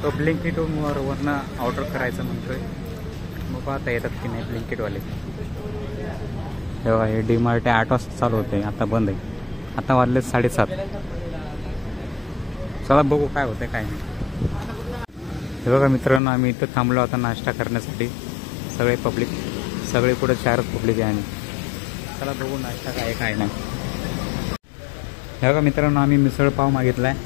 तो ब्लिंकिटवरनं ऑर्डर करायचं म्हणतोय. बघू आता येतात की नाही ब्लिंकिटवाले. हे बघा, हे डीमार्ट 8 वाजता चालू होते, आता बंद आहे. आता वाजले 7:30. चला बघू काय होतं काय नाही. हे बघा मित्रांनो, आम्ही इथं थांबलो आता नाश्ता करण्यासाठी. सगळे पब्लिक, सगळे पुढे 4 पब्लिक आहे. आणि चला बघू नाश्ता काय नाही. हे बघा मित्रांनो, आम्ही मिसळपाव मागितला आहे.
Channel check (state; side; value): drops out; right; at 16.2 s